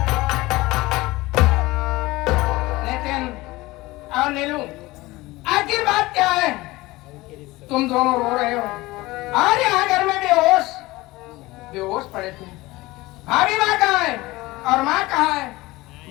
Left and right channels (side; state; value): right; quieter; 20.1 dB